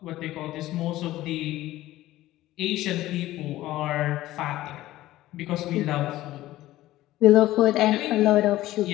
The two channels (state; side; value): quieter; right; 15.8 dB